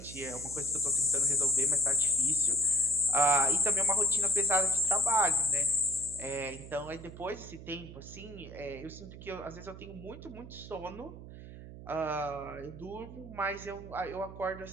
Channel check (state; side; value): noise; right; hum, 14 dB below the sound